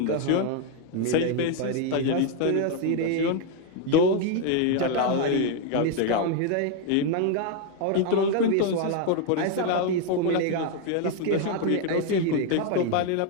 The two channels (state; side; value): different; both; correlation 0.01